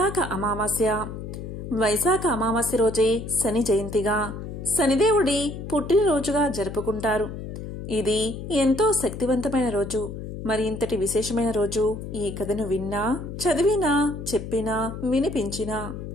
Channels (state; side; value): noise; left; hum, 8 dB below the sound